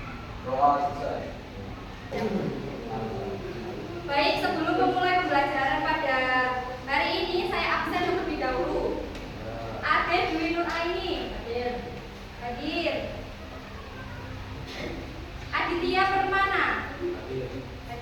Doa selesai. Baik, sebelum memulai pembelajaran pada hari ini, saya absen terlebih dahulu. Ade Dwi Nur Aini hadir. Aditya Permana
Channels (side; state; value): both; identical; correlation 1.00